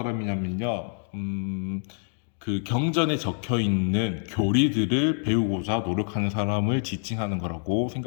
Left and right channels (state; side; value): silent; right; 61 dB below the other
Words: 그 경전에 적혀 있는 교리들을 배우고자 노력하는 사람을 지칭하는 거라고